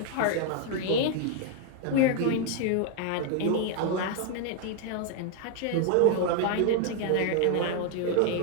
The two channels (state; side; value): different; both; correlation 0.00